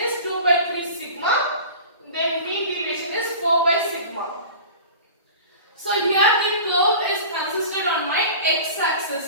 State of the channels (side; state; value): both; inverted; correlation -0.38